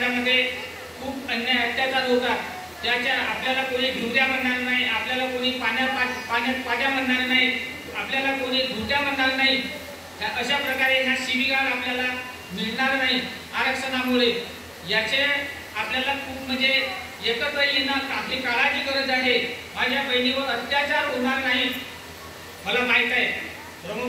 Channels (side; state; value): both; identical; correlation 1.00